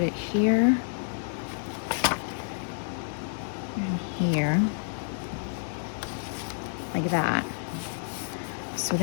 it here and here, like that. So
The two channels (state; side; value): silent; right; 58 dB below the other